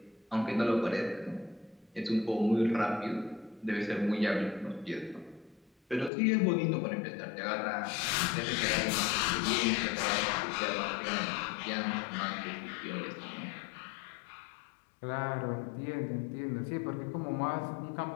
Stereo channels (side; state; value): right; drops out; at 6.1 s